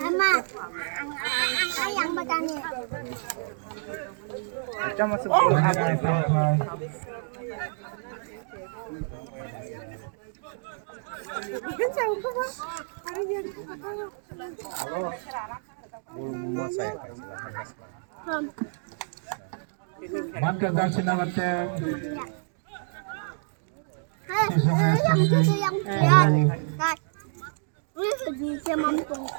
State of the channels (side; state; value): left; silent; digital silence